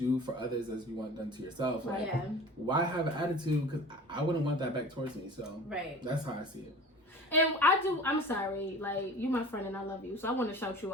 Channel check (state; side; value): normal; both; correlation 0.40